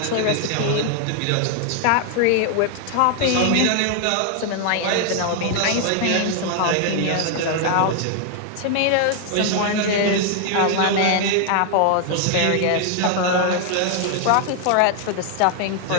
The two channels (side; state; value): both; different; correlation 0.00